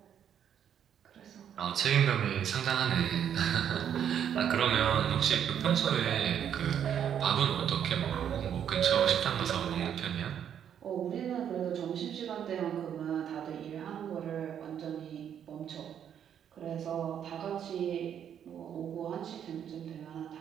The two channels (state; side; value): quieter; left; 9.1 dB